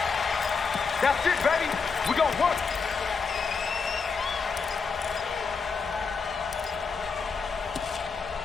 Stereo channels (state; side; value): quieter; right; 5.1 dB